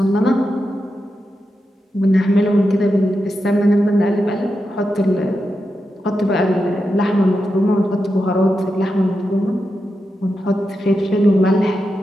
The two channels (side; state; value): both; normal; correlation 0.88